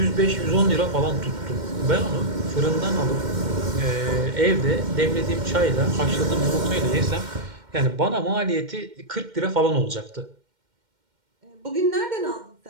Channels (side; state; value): left; late; 2.1 ms